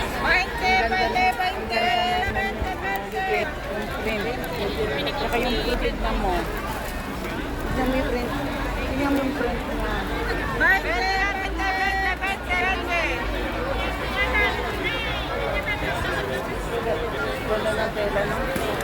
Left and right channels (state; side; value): identical; both; correlation 1.00